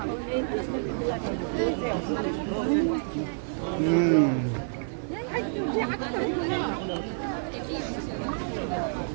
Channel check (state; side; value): silent; left; 59 dB below the other